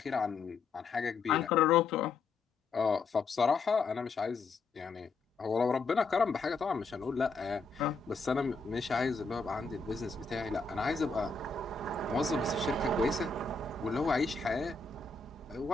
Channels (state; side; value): quieter; right; 4.1 dB